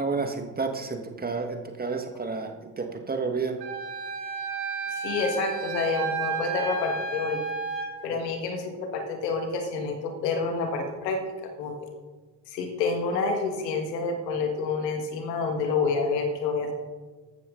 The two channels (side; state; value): both; normal; correlation 0.09